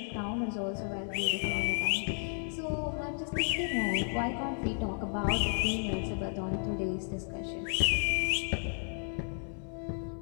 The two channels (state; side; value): silent; right; 56 dB below the other